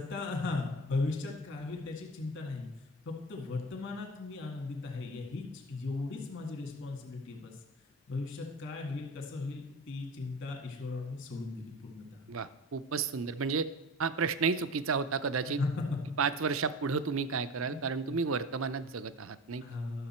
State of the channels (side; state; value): both; normal; correlation 0.32